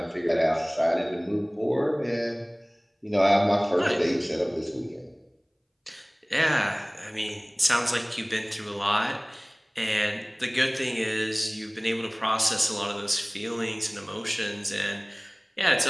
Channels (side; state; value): both; identical; correlation 1.00